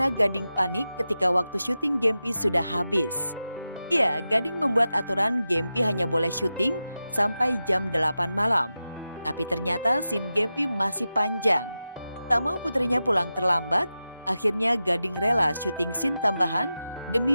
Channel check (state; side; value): inverted; both; correlation -0.92